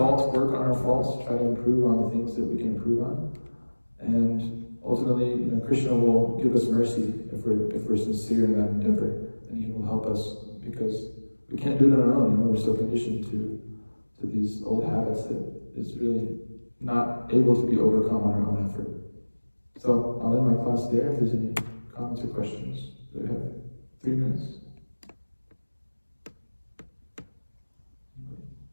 work on our faults, try to improve on the things that we can improve on. And ultimately, you know, Krishna will give us mercy if we're sincere in that endeavor, and he will help us, because we can't do it on our own. You know, we're so conditioned to these old habits that it's really not able to be overcome on our own effort. So I'll end my class there. If there's any comments or questions, we have 3 minutes.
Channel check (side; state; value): both; inverted; correlation -1.00